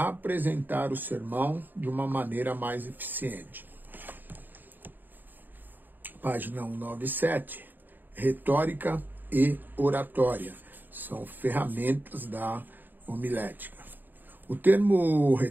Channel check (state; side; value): late; left; 0.090 ms